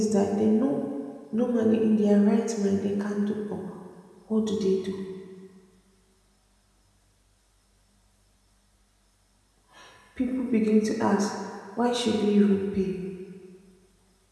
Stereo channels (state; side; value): identical; both; correlation 1.00